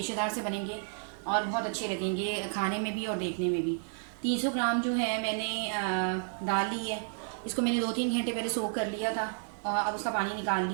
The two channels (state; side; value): silent; left; 57 dB below the other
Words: से बनेंगे और बहुत अच्छे लगेंगे खाने में भी और देखने में भी। 300 ग्राम जो है मैंने दाल ली है। इसको मैंने 2-3 घंटे पहले सोक कर लिया था और अब उसका पानी निकाल